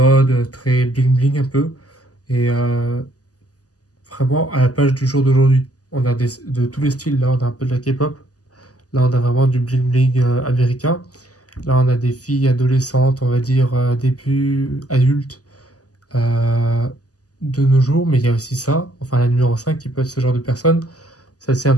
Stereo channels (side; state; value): right; late; 0.67 ms